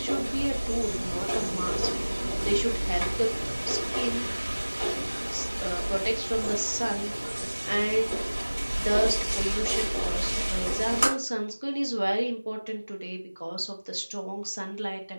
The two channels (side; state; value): both; inverted; correlation -1.00